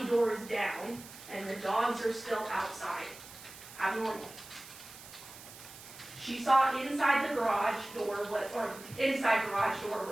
door is down, and the dogs are still outside. Abnormal. She saw inside the garage door, inside garage door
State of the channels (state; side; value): noise; right; hiss, 16 dB below the sound